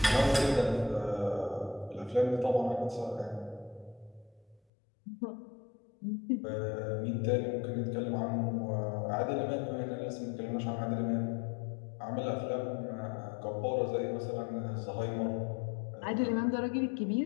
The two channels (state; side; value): drops out; right; at 4.6 s